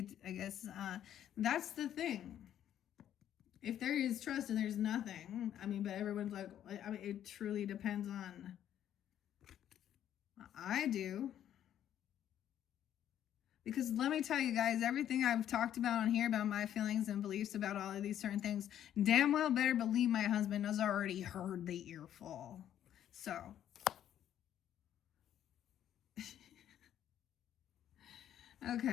guess that's the thing. If there is trust and there's nothing, I mean, but everyone's like, I mean, it truly depends on. I do. Because let me tell you guys, everything I've talked about on here about my feelings and beliefs about all of these certain things, damn well better believe my husband has already heard the earful. So.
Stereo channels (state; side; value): quieter; right; 10.7 dB